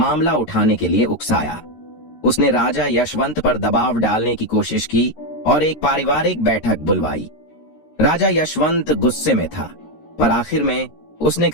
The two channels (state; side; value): late; right; 13 ms